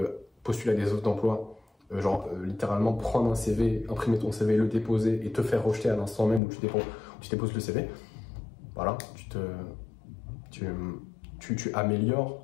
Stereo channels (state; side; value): drops out; right; at 6.4 s